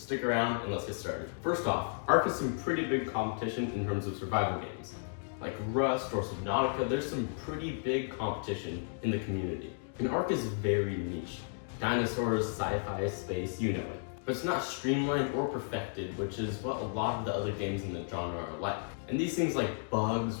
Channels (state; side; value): silent; right; digital silence